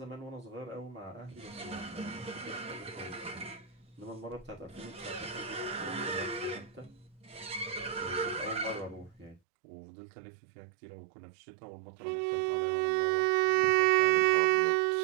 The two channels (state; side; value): drops out; left; at 9.4 s